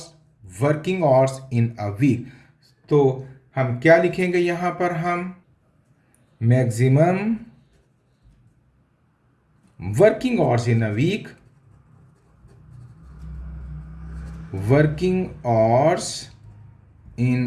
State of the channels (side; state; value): both; identical; correlation 1.00